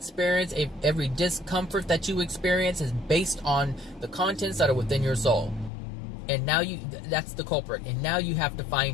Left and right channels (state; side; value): drops out; right; at 5.7 s